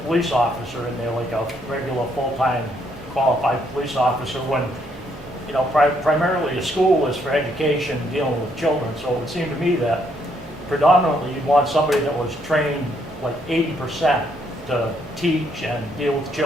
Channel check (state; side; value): normal; both; correlation 0.72